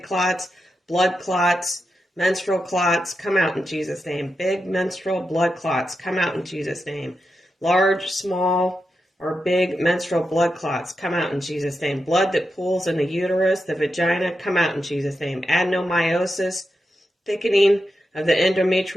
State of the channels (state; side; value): normal; both; correlation 0.88